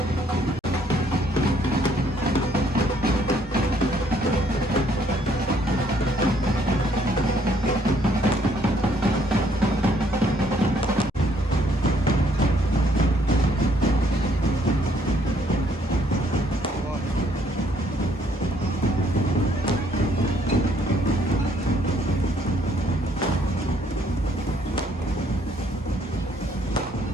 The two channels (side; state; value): both; normal; correlation 0.66